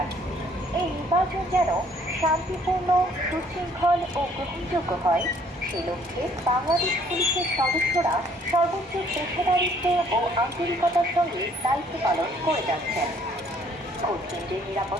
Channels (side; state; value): both; normal; correlation 0.61